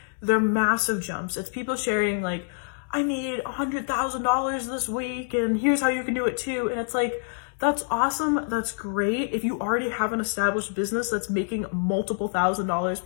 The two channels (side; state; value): right; silent; 61 dB below the other